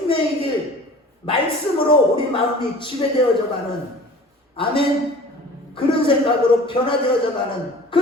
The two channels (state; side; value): normal; both; correlation 0.44